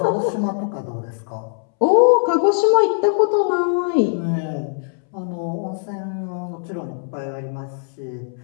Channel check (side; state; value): right; silent; 65 dB below the other